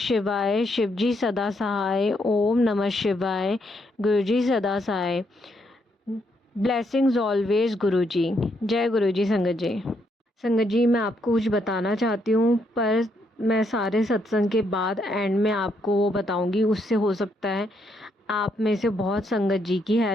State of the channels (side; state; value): both; normal; correlation 0.75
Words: शिवजी सदा सहाय। ओम नमः शिवाय, गुरुजी सदा सहाय। ब्लेसिंग्स ऑलवेज गुरुजी। जय गुरुजी। संगत जी, मैं आपको कुछ बताना चाहती हूँ, पर मैं सारे सत्संग के बाद एंड में आपको वो बताऊंगी। उससे हो सकता है आप में से बहुत संगत जी की